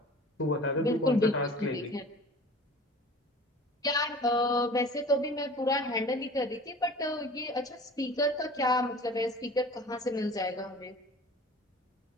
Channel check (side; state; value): both; normal; correlation 0.42